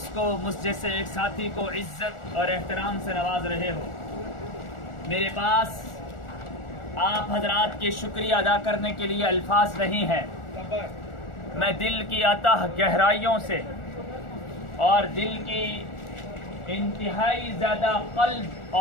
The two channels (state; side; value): late; right; 1.4 ms